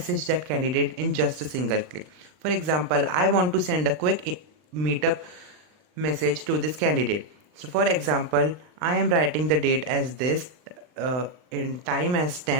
that candidate in just a single click. For example, I want to send a quick meetup message to this candidate. So for example, I am writing the date as this, in time as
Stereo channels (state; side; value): late; left; 39 ms